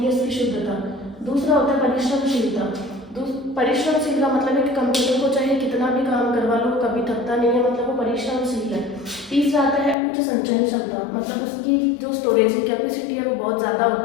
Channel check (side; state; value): right; drops out; at 10.0 s